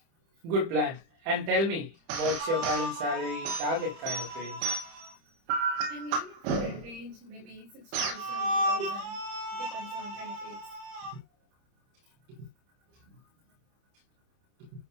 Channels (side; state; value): left; late; 30 ms